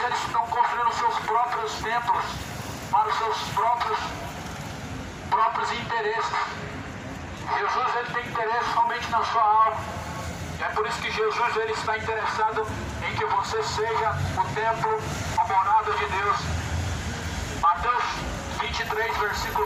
eles estão construindo seus próprios templos para os seus próprios interesses. Jesus, ele tem interesse somente na sua alma. E é por isso que Jesus, ele está interessado em que você seja o templo, a morada de Deus. Mateus 23,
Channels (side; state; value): both; identical; correlation 1.00